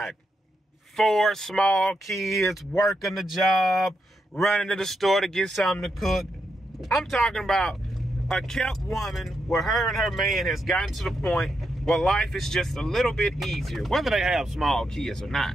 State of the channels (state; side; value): normal; both; correlation 0.83